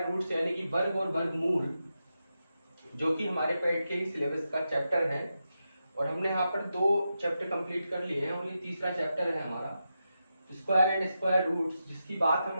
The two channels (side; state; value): both; inverted; correlation -0.88